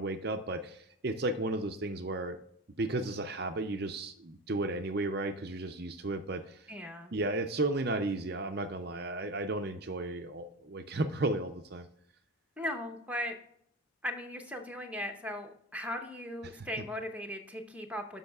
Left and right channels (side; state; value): both; normal; correlation 0.27